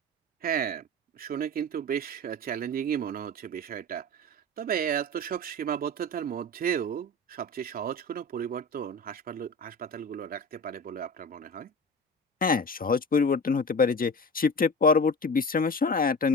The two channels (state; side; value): normal; both; correlation 0.32